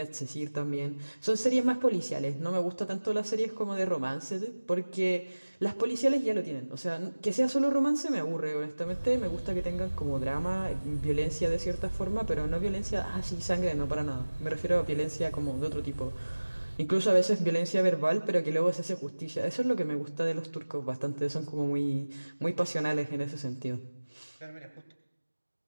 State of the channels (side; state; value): both; inverted; correlation -1.00